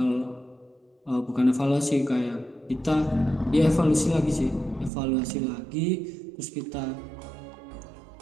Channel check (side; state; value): left; drops out; at 4.9 s